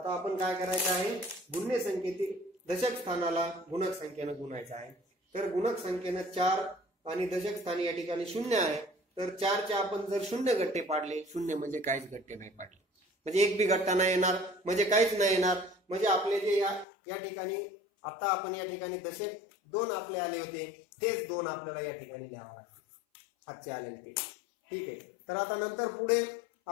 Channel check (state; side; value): drops out; right; at 16.9 s